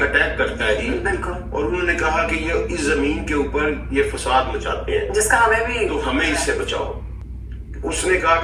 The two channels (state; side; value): identical; both; correlation 1.00